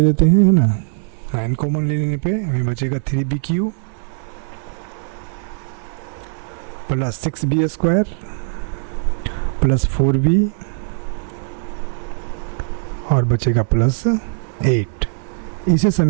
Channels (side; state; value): left; silent; 61 dB below the other